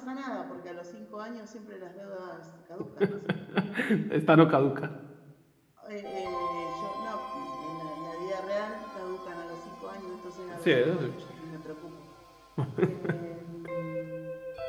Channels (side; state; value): both; identical; correlation 1.00